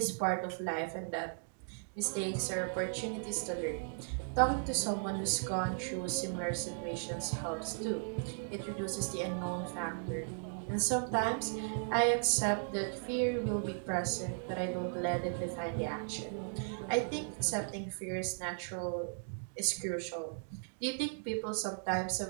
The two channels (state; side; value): silent; left; digital silence